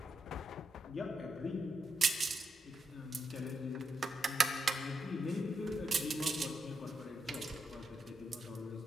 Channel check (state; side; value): normal; both; correlation 0.82